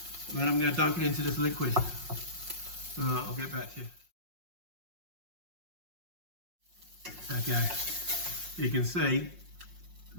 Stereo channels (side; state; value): left; late; 5.5 ms